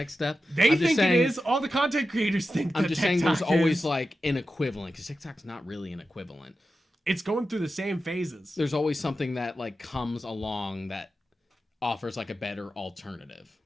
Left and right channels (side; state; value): both; normal; correlation 0.91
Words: step? They think it is. All the content creators think that I'm just TikTok saying there's is. always like an equivalent, because TikTok's not really an equivalent. It's going through the same phases. There's always something that like comes along that offers like a better alternative.